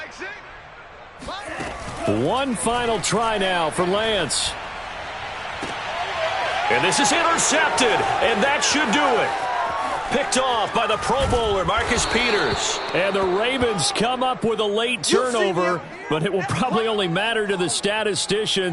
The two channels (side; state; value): both; identical; correlation 1.00